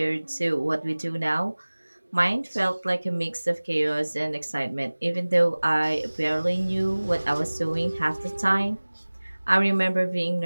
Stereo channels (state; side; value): inverted; both; correlation -1.00